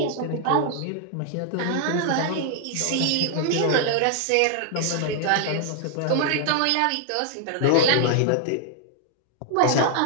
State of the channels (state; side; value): different; both; correlation 0.00